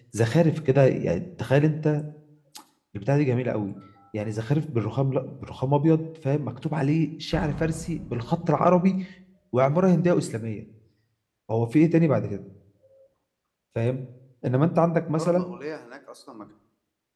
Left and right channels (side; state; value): both; identical; correlation 1.00